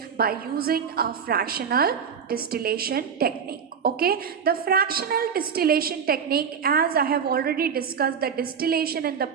by using a fractional distillation technique. Okay, the fractional distillation technique, as I have already discussed the distillation in the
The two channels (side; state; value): left; quieter; 7.0 dB